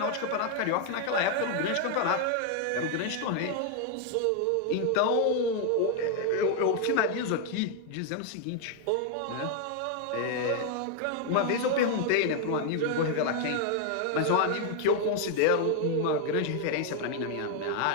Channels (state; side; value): different; both; correlation 0.00